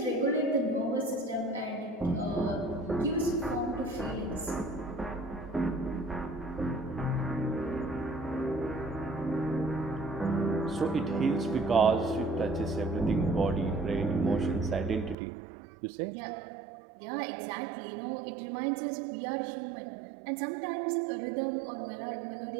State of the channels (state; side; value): drops out; left; at 15.2 s